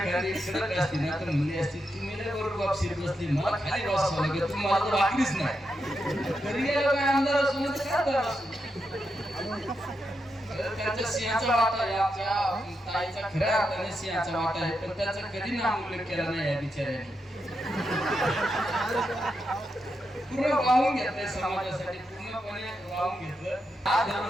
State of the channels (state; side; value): normal; both; correlation 0.85